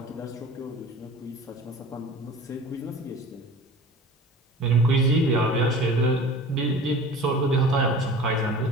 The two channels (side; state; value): both; normal; correlation 0.40